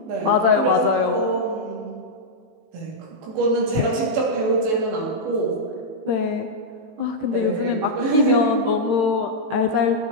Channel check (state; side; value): late; left; 19 ms